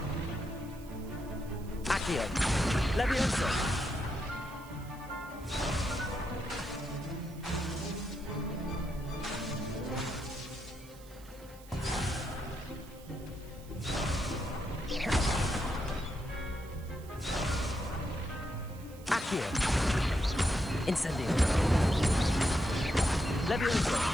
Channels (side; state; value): right; noise; hiss, 22 dB below the sound